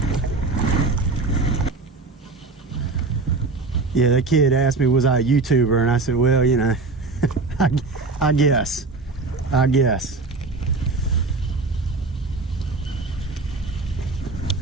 Yeah, that kid asked me, was I a YouTuber? And I said, well, you know, I guess. I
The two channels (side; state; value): left; quieter; 3.8 dB